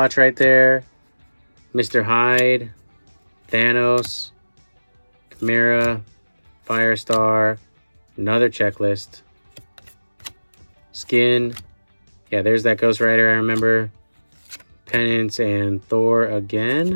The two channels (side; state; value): both; inverted; correlation -1.00